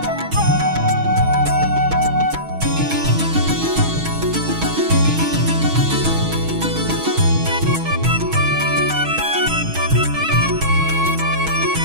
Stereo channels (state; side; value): late; left; 6.3 ms